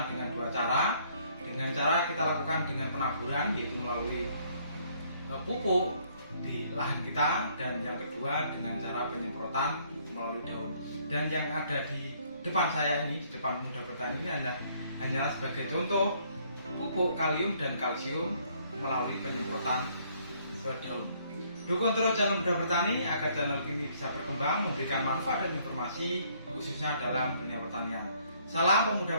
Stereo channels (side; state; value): both; inverted; correlation -0.65